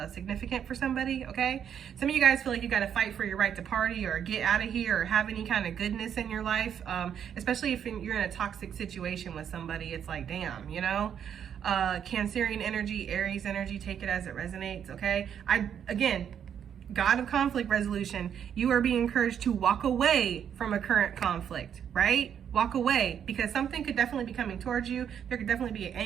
significant for somebody, okay? Some of you guys feel like you got to fight for your right to party or get out of here or have any kind of goodness in your life, especially if you're in a toxic situation with somebody. It's like, damn, you know? Cancerian energy, Aries energy, take it as it resonates, okay? Again, God of conflict resolution, you are being encouraged to walk away from a current conflict, right? Walk away, because something could definitely be coming towards you. There could definitely be an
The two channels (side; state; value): left; quieter; 8.6 dB